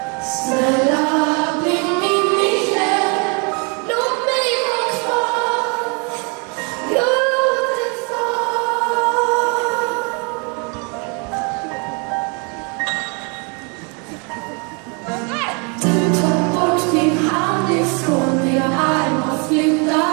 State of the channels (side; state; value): left; quieter; 34.6 dB